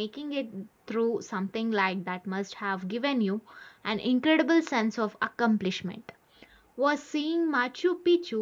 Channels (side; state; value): both; identical; correlation 1.00